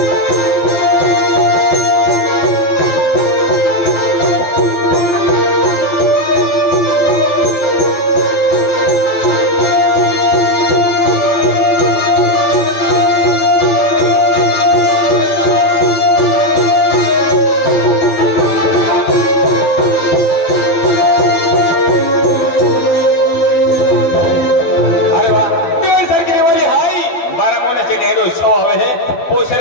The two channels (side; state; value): right; late; 12 ms